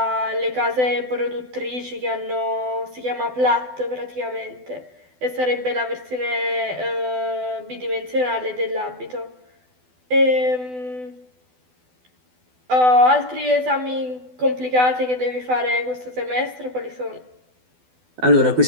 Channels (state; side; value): late; left; 12 ms